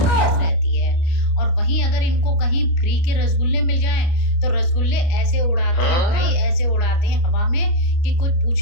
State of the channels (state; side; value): late; right; 29 ms